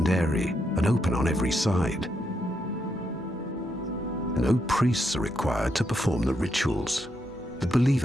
airy and open on every side. No priests are required to perform the rituals. The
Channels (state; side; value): normal; both; correlation 0.80